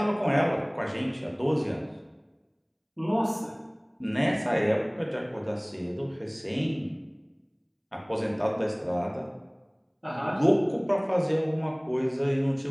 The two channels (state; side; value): identical; both; correlation 1.00